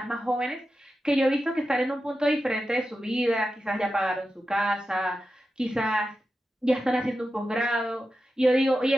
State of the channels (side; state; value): both; normal; correlation 0.91